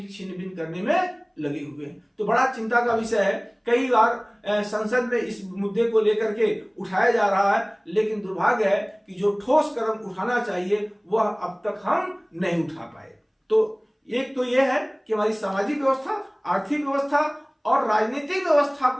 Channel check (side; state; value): both; identical; correlation 1.00